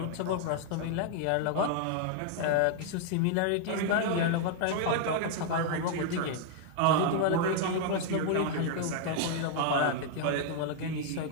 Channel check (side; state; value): both; different; correlation 0.00